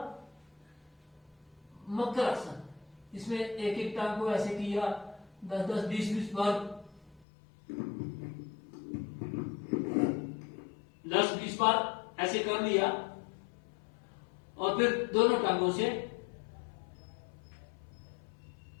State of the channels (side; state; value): right; drops out; at 7.2 s